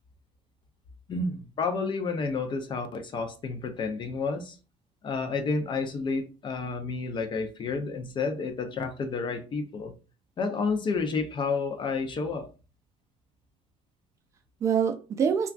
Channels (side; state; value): both; normal; correlation 0.55